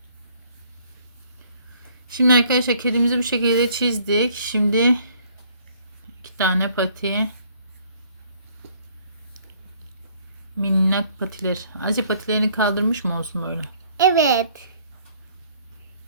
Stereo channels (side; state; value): both; inverted; correlation -0.60